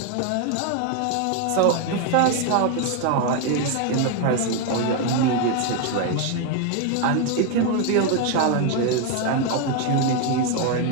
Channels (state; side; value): different; both; correlation 0.01